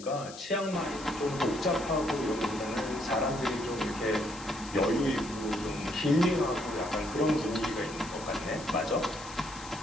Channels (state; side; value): noise; left; hiss, 15 dB below the sound